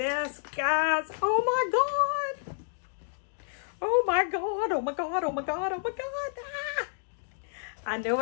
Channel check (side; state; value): right; silent; digital silence